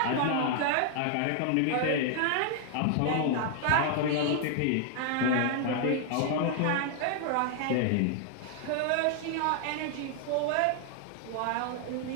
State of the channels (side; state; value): both; different; correlation 0.00